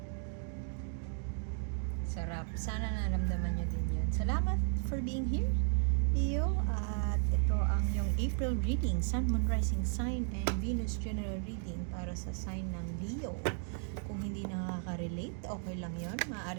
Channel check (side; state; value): left; silent; 55 dB below the other